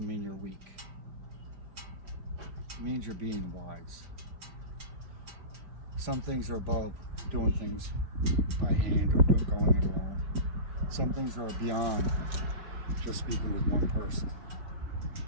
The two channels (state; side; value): late; left; 5.4 ms